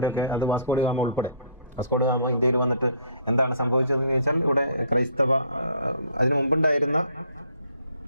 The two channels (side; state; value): both; inverted; correlation -0.59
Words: അത് വാസ്കോ ഡ ഗാമ ഉൾപ്പെടെ, വാസ്കോ ഡ ഗാമ ഇന്ത്യയിൽ വന്നിട്ട് എന്താണ് സംഭവിച്ചതെന്ന് ചോദിച്ചാൽ, ഇവിടെ ക്രൈസ്തവ, അതിനു മുമ്പുണ്ടായിരുന്ന